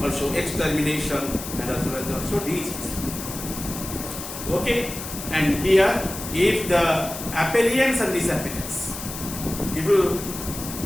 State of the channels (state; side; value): noise; left; hiss, 9 dB below the sound